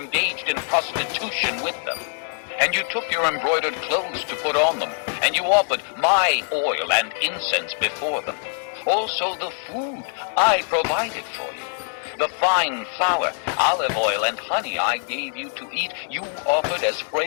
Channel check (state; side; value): silent; right; 63 dB below the other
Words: in prostitution with them. And you took your embroidered clothes to put on them, and you offered my oil and incense before them. Also the food I provided for you, the fine flour, olive oil, and honey I gave you to eat, you offered as